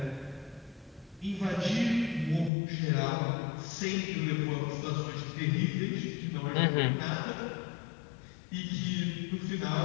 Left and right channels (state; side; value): drops out; right; at 2.5 s